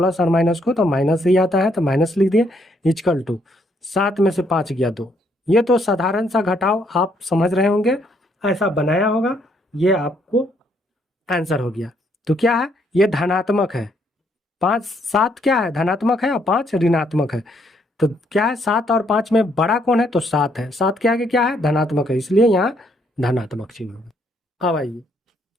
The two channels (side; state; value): both; normal; correlation 0.71